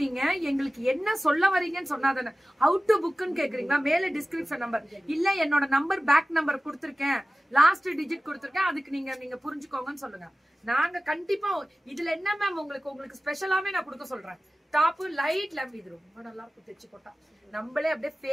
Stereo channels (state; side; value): normal; both; correlation 0.96